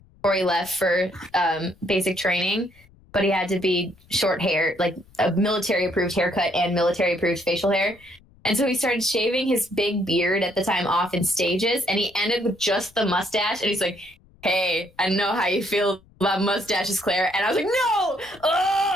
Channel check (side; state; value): left; noise; rumble, 28 dB below the sound